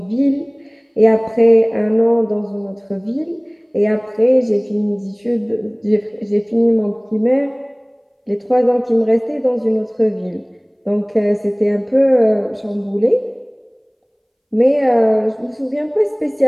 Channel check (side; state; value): both; identical; correlation 1.00